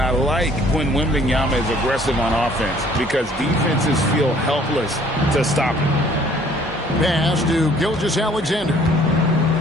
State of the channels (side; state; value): both; normal; correlation 0.57